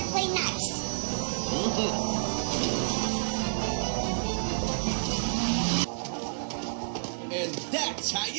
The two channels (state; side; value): silent; left; 58 dB below the other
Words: play nice. And that's how